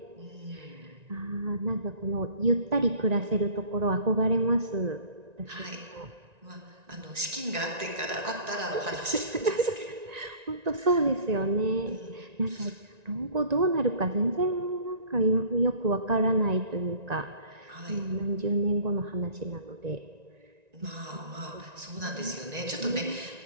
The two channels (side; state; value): left; late; 1.9 ms